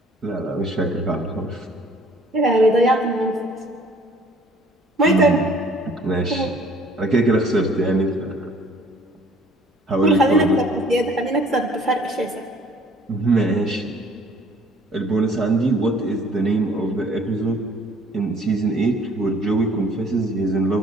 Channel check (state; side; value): normal; both; correlation 0.56